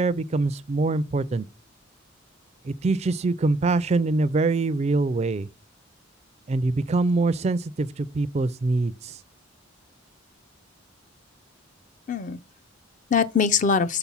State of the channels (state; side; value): normal; both; correlation 0.57